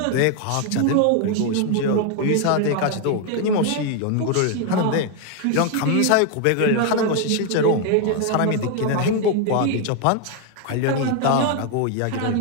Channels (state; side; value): different; both; correlation 0.01